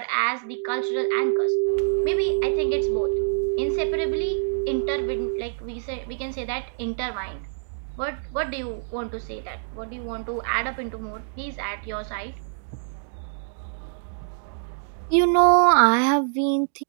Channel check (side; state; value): left; silent; 61 dB below the other